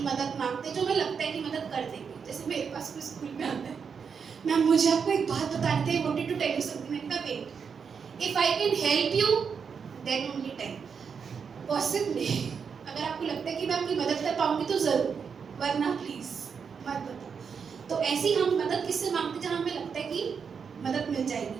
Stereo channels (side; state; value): left; quieter; 6.3 dB